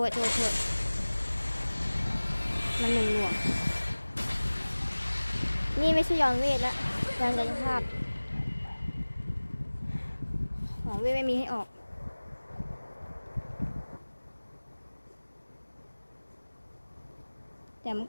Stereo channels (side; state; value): both; inverted; correlation -1.00